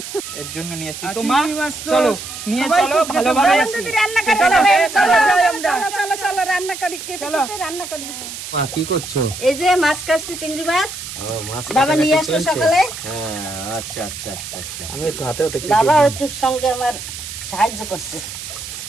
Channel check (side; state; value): right; noise; hiss, 10 dB below the sound